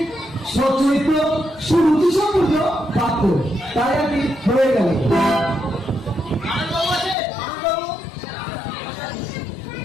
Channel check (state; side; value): drops out; right; at 7.2 s